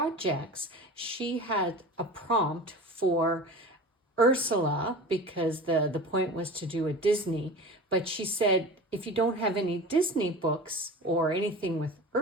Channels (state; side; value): normal; both; correlation 0.35